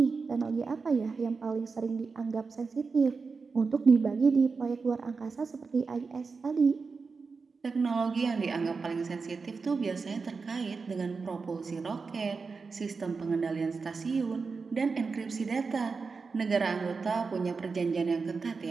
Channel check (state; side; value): quieter; left; 4.7 dB